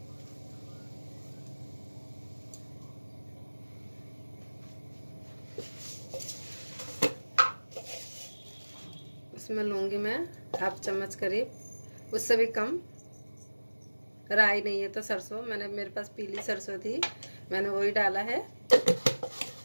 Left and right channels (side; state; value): both; inverted; correlation -1.00